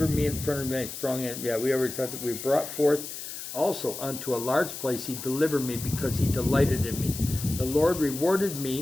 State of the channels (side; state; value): left; noise; hiss, 9 dB below the sound